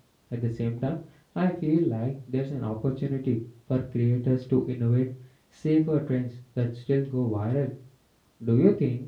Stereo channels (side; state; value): both; identical; correlation 1.00